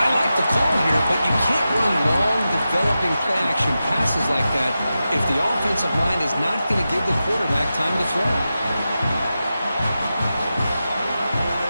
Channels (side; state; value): both; inverted; correlation -0.92